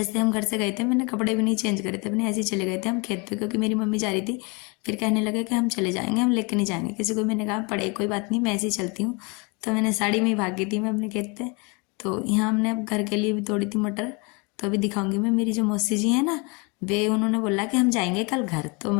हम घर से गए थे, मैंने कपड़े भी नहीं चेंज करे थे अपने, ऐसे ही चले गए थे हम खेत पे, क्योंकि मेरी मम्मी जा रही थी। फिर कहने लगे कि हम चले जाएंगे, हम लेके नहीं जाएंगे किसी को। मैंने कहा पड़े कोई बात नहीं, मैं ऐसे ही चलती हूँ। तो मैंने साड़ी में ही भागी थी मैं अपने खेत पे। तो यहाँ हमने अब घर के लिए भी तोड़ी थी मटर, तो अभी दिखाऊंगी मैं। मेरी जो मौसी जी है ना, वे उन्होंने बोला कि हम जाएंगे कल घर। तो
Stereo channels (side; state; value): right; quieter; 30.2 dB